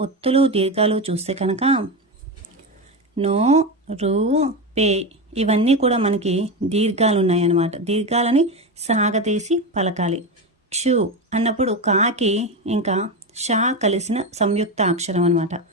ఒత్తులు దీర్ఘాలు చూస్తే కనుక నో రు పే ఇవన్నీ కూడా మనకి దీర్ఘాలు ఉన్నాయన్నమాట. దీర్ఘాలని సాగతీసి పలకాలి. క్షు అన్నప్పుడు కాకి ఇంకా షా కలిసిన సంయుక్త అక్షరం అనమాట.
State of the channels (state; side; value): normal; both; correlation 0.17